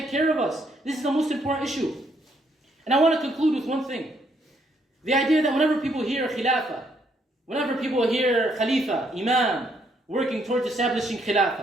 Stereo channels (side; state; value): both; normal; correlation 0.72